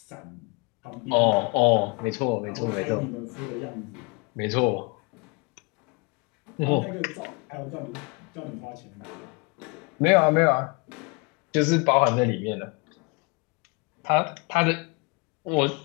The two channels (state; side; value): quieter; right; 30.8 dB